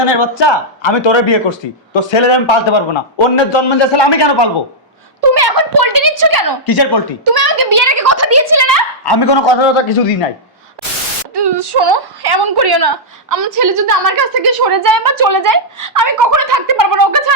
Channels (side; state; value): both; normal; correlation -0.09